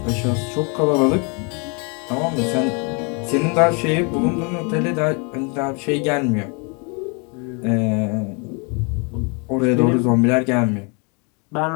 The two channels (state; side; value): quieter; right; 33.9 dB